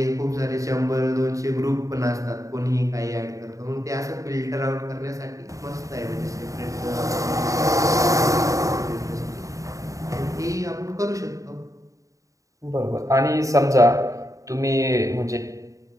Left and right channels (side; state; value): left; late; 0.16 ms